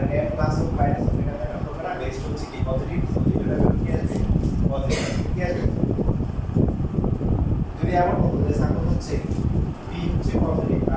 এম প্লাস হোক মাইনাস হোক এখানে একটা হবে না, বেস্ট হচ্ছে কি পজিটিভ, পজিটিভটা কি আসবে, পজিটিভ কি আসবে। যদি এমন হতো যে সাপোজ হচ্ছে পি হচ্ছে পজিটিভ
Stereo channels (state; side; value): identical; both; correlation 1.00